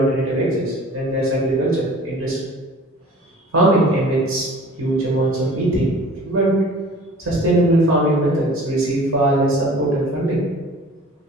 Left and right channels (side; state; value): both; normal; correlation 0.46